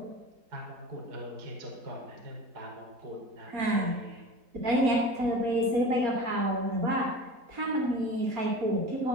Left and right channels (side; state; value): left; late; 4.2 ms